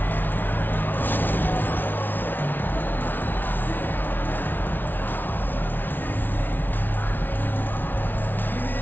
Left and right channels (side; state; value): right; late; 0.091 ms